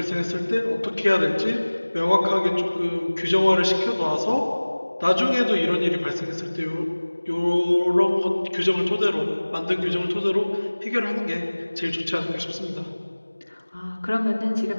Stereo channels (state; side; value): inverted; both; correlation -1.00